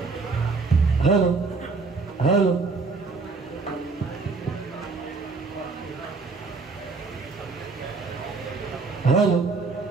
हॅलो हॅलो हॅलो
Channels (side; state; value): left; quieter; 4.3 dB